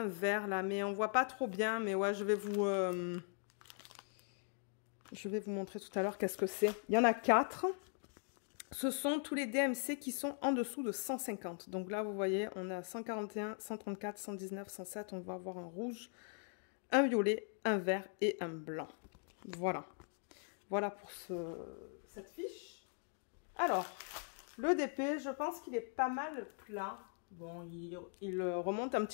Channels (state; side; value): silent; right; 51 dB below the other